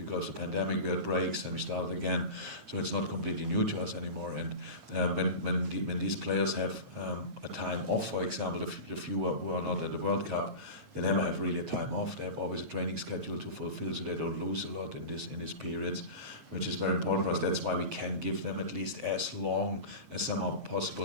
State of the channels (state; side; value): late; left; 9.0 ms